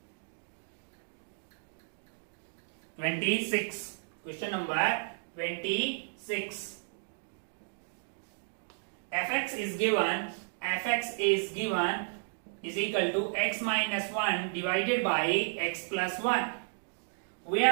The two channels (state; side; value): silent; left; digital silence